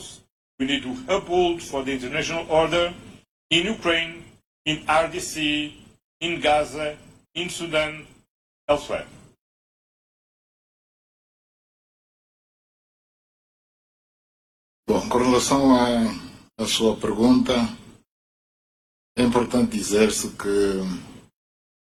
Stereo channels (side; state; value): both; identical; correlation 1.00